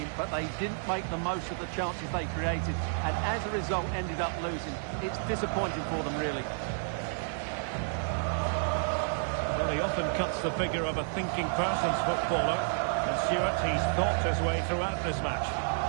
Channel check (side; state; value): left; silent; digital silence